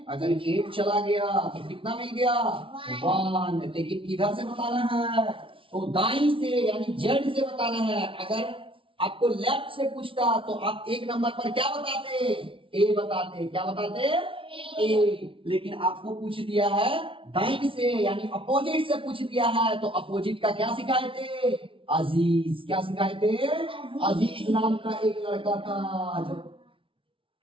अगर 8 चला गया तो कितना मिल गया, 1। लेकिन किधर से बताना है, तो दाईं से यानी जेड से बताना है। अगर आपको लेफ्ट से पूछता तो आप एक नंबर पर क्या बताते? ए बताते। क्या बताते? ए। लेकिन आपको पूछ दिया है दाईं से यानी अपोजिट से पूछ दिया है तो अपोजिट का क्या सिखाए थे? अजीज। क्या सिखाए थे? अजीज नाम का एक लड़का था जो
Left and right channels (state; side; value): late; left; 0.25 ms